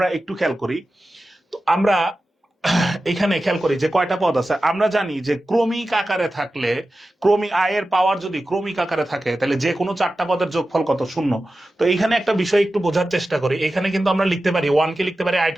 একটু খেয়াল করি, তো আমরা এখানে খেয়াল করি যে কয়টা পদ আছে। আমরা জানি যে ক্রমিক আকারে থাকলে, ক্রমিক আয়ের পাওয়ার যদি ক্রমিক আকারে থাকে, তাহলে যে কোনো চারটা পদের যোগফল কত? 0। তো এইখানে একটা বিষয় একটু বোঝার চেষ্টা করি, এখানে কিন্তু আমরা লিখতে পারি 1 কে লিখতে পারি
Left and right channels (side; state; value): both; normal; correlation 0.94